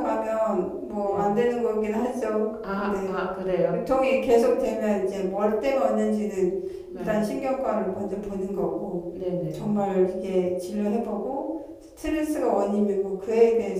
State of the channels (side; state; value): both; identical; correlation 1.00